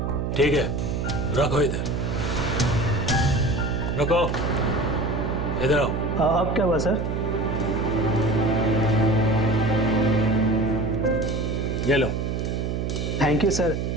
ठीक है, रखो इधर, रखो इधर आओ। अब क्या हुआ सर? ये लो। Thank you sir,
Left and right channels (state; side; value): noise; right; hum, 1 dB below the sound